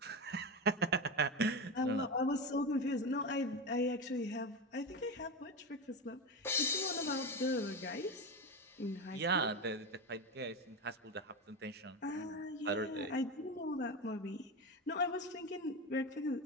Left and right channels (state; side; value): normal; both; correlation 0.19